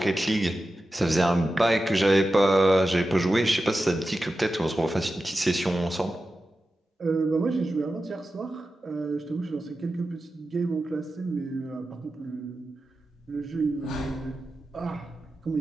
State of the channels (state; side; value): normal; both; correlation 0.92